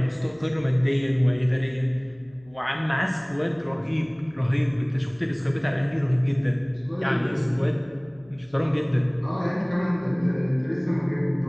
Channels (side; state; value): left; noise; hum, 28 dB below the sound